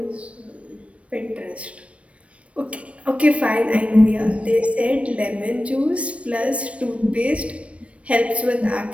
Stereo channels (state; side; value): late; left; 0.062 ms